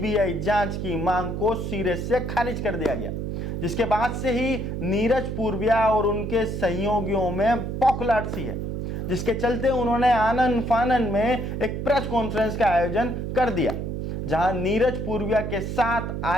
जांच की मांग को सिरे से खारिज कर दिया गया, जिसके बाद से ही नीरज पूर्विया और उनके सहयोगियों में पौखलाहट सी है, जिसके चलते उन्होंने आनन फानन में एक प्रेस कॉन्फ्रेंस का आयोजन कर दिया, जहां नीरज पूर्विया के साथ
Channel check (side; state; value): right; noise; hum, 4 dB below the sound